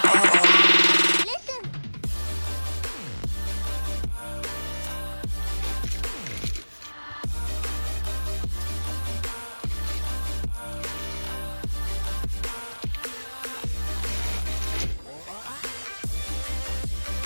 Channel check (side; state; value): both; inverted; correlation -1.00